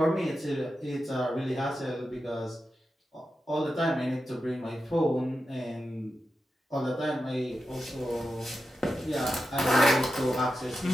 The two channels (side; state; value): both; normal; correlation 0.90